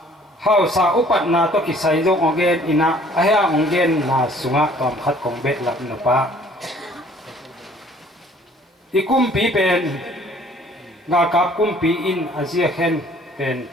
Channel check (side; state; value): both; normal; correlation 0.56